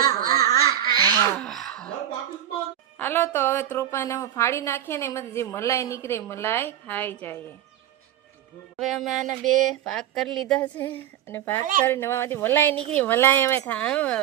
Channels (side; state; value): left; quieter; 11.2 dB